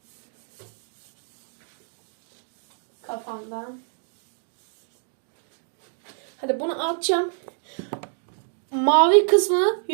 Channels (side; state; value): left; silent; 60 dB below the other